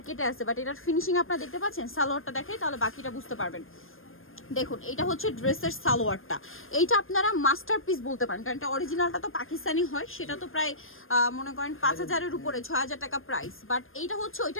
আছে, বাট এটার ফিনিশিং আপনারা দেখতে পাচ্ছেন। সালোয়ারটা দেখাই তাহলে বাকিটা বুঝতে পারবেন। দেখুন, এটা হচ্ছে ড্রেসের সালোয়ারটা। এইটা আপনারা মাস্টারপিস বলতে পারেন, কারণ এটা অরিজিনালটা তো পাকিস্তানি হয়, সেটা তো প্রায় মনে করেন 5,000-এর উপরে, 6,000 টাকা প্রাইস। বাট এইটা হচ্ছে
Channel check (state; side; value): late; right; 0.60 ms